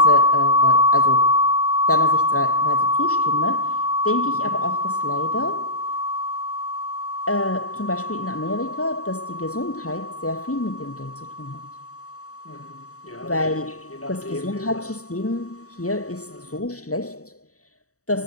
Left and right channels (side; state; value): right; late; 0.65 ms